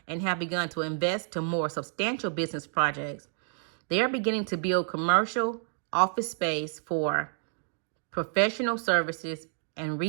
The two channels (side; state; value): left; silent; 58 dB below the other